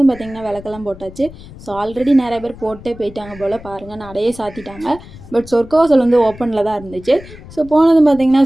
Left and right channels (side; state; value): left; noise; rumble, 18 dB below the sound